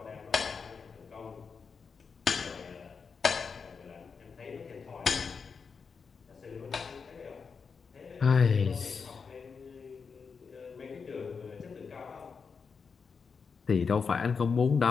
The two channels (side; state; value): right; quieter; 5.5 dB